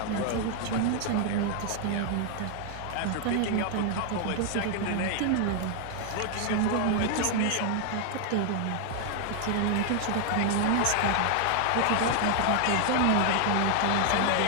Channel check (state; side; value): different; both; correlation 0.00